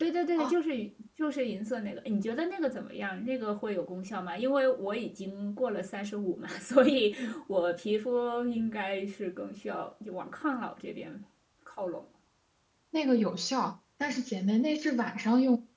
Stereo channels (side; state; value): both; identical; correlation 1.00